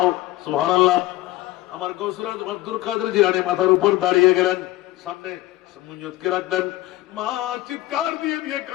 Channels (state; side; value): quieter; right; 16.7 dB